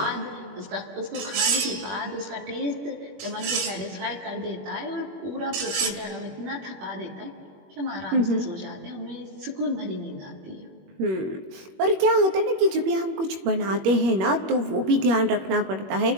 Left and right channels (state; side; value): late; left; 21 ms